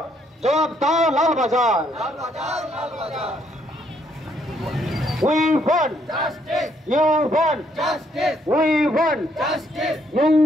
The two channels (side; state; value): both; normal; correlation 0.70